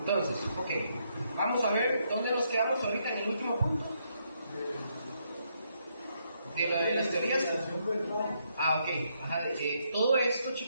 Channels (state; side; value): inverted; both; correlation -0.76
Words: ok, vamos a ver dónde nos quedamos ahorita en el último punto. De las teorías. Ok. Ajá, todo esto,